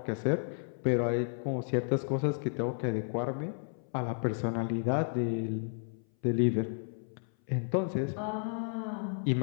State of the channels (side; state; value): right; silent; 56 dB below the other